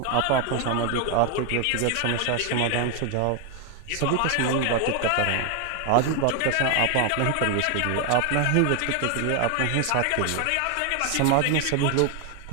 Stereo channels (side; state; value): both; different; correlation 0.01